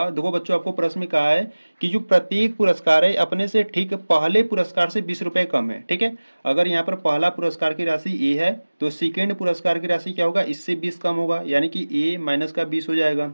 देखो बच्चों आपको प्रश्न में कहा है कि जो प्रत्येक पुरस्कार है अपने से ठीक पहले पुरस्कार से 20 रुपए कम है। ठीक है, अगर यहाँ पर पहला पुरस्कार की राशि ए है तो सेकेंड पुरस्कार की राशि क्या होगा, इससे 20 कम होगा, यानी कि ए माइनस का 20 हो जाएगा।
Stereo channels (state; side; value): inverted; both; correlation -1.00